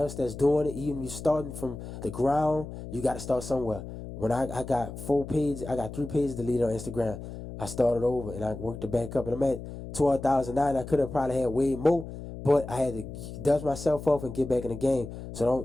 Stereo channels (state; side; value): noise; left; hum, 10 dB below the sound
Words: else that's doing it. Even if you're starting from the ground, you got to start somewhere. When I got 4 pages, I got 3 pages deleted on Instagram. I started over and I worked it back up and I'm at 12,009. I could have probably had way more, but I had to dust myself off and get back in the game.